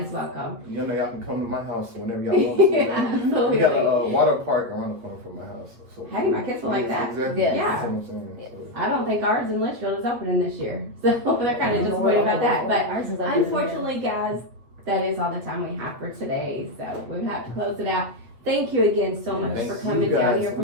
Yes. welcome. You know, y'all can come to my house whenever y'all want to. Man. Absolutely. We got a water park around the corner from my house. So Hey, my kids will like that. Exactly. Yes. That's what I'm saying. Yes. So. I don't think ours in Litchfield is opening this year, so they're kind of disappointed about that. But Ours is open. unfortunately, guys, that is all the time we have for today. So we have to close it out. Thank you again so much Thank for you coming down guys. here from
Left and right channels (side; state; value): left; late; 8.6 ms